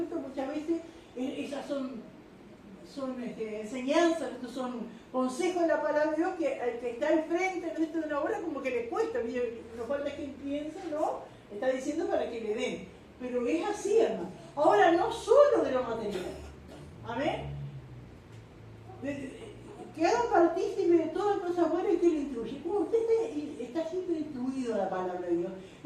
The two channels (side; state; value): both; identical; correlation 1.00